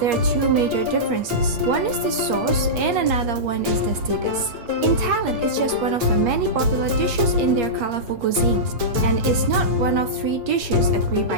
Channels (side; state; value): left; late; 8.5 ms